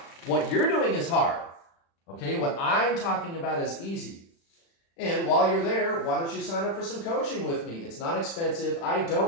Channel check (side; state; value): right; late; 36 ms